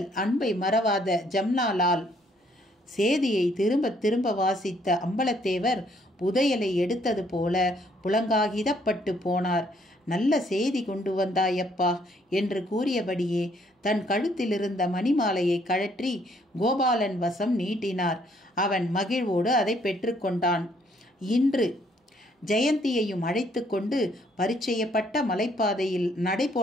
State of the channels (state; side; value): normal; both; correlation 0.67